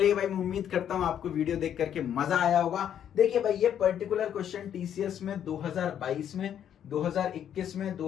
भाई, मैं उम्मीद करता हूं आपको वीडियो देख करके मजा आया होगा। देखिए भाई, ये पर्टिकुलर क्वेश्चन टीसीएस में 2022 में, 2021 में,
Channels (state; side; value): quieter; right; 9.6 dB